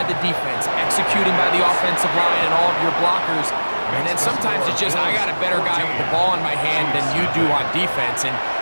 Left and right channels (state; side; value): inverted; both; correlation -1.00